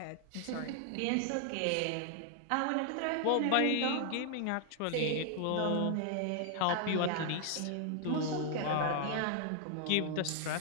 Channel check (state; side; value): different; both; correlation 0.00